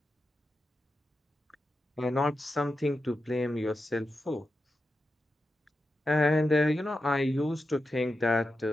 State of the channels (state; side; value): normal; both; correlation 0.89